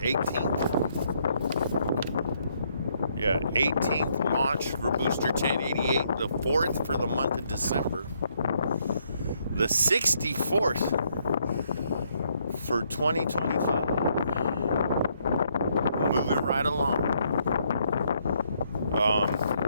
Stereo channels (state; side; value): inverted; both; correlation -0.72